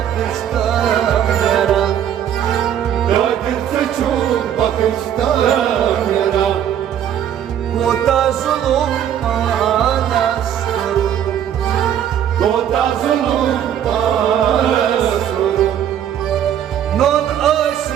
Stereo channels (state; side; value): quieter; left; 9.9 dB